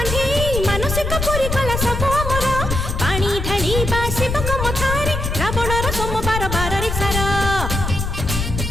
मानसिक पुरी कला सब अमर। पानी ढालिबा शिवक मथारे रावणर सोमवार बार रे सारा।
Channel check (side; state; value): left; noise; rumble, 3 dB below the sound